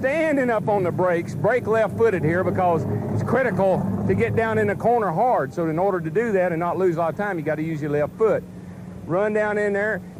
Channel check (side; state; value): both; identical; correlation 1.00